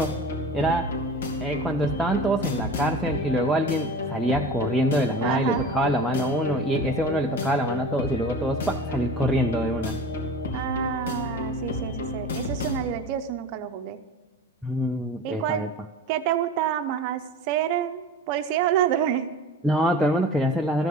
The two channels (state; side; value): normal; both; correlation 0.36